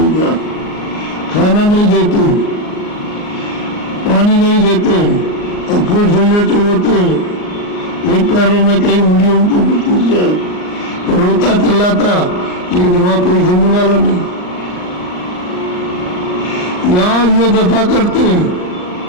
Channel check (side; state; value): right; late; 39 ms